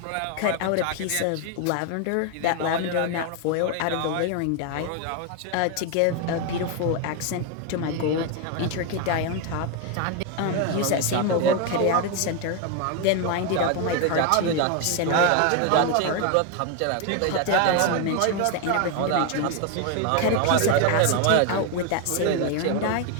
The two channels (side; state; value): both; different; correlation 0.01